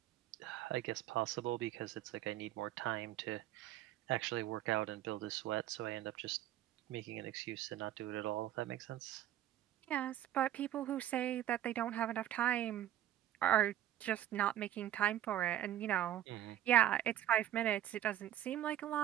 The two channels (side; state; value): left; quieter; 12.2 dB